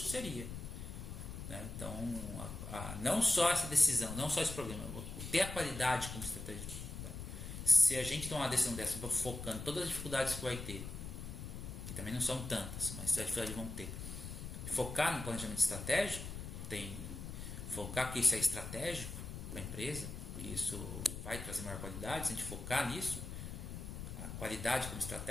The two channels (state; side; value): noise; left; rumble, 8 dB below the sound